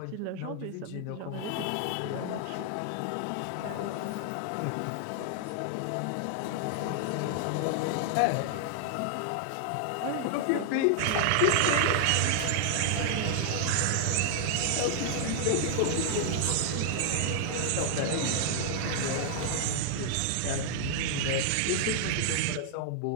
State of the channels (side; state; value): both; different; correlation -0.01